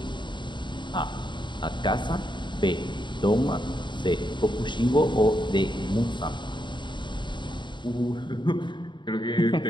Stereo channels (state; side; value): late; right; 0.23 ms